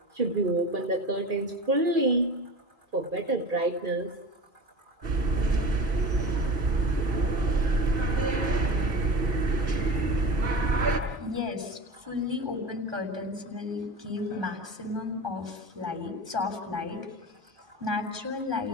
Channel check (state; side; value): late; left; 1.2 ms